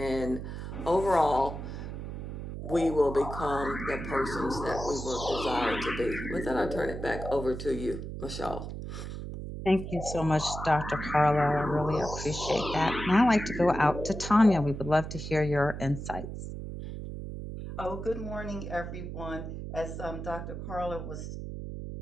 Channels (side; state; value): right; noise; hum, 7 dB below the sound